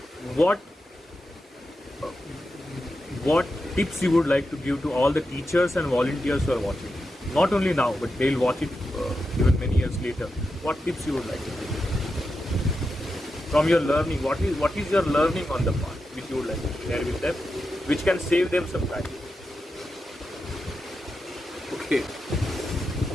What tips you would like to give to all the teachers and volunteers who are watching? Not only now, but they'll watch it even many years later. What tips you would like to give? From your learning, what is your learning on the path which you would like to share with them, which can save them some time? Okay.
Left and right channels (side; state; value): both; normal; correlation 0.88